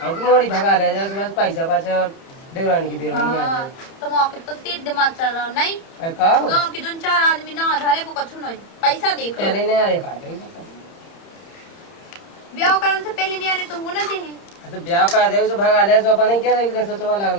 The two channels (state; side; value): late; right; 30 ms